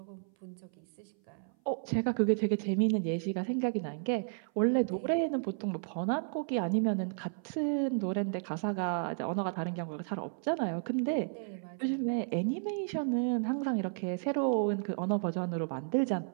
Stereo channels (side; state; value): left; silent; 56 dB below the other